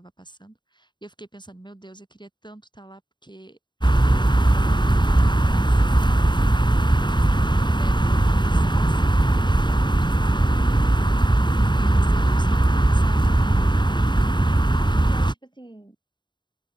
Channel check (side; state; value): right; late; 0.22 ms